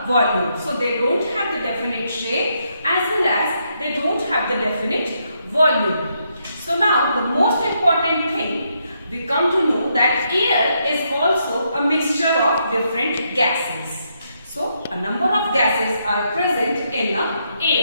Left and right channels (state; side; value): inverted; both; correlation -0.78